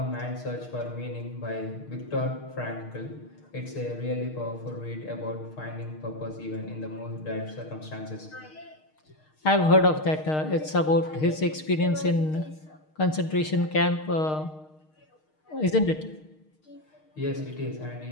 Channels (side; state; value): right; late; 6.5 ms